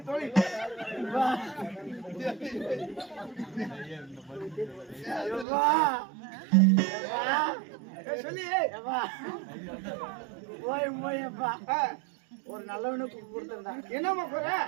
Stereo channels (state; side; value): drops out; left; at 5.5 s